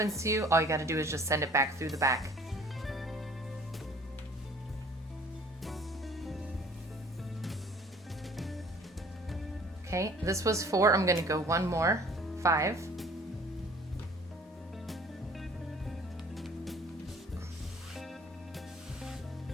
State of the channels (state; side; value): normal; both; correlation 0.52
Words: to you, all you got to do is just send it back through the back. Okay, this was 4. I'm going to go 1 more. 5.